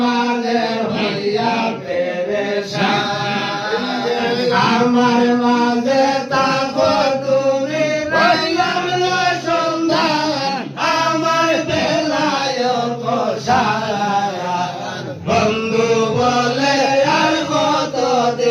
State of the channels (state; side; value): identical; both; correlation 1.00